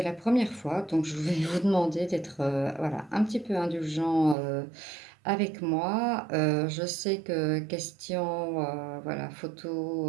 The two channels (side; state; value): left; drops out; at 4.4 s